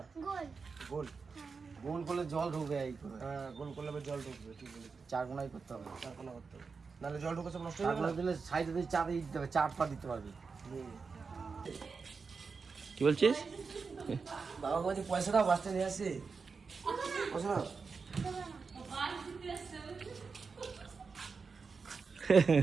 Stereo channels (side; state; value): left; quieter; 4.9 dB